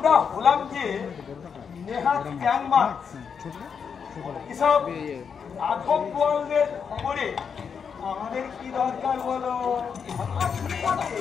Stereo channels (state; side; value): quieter; right; 6.6 dB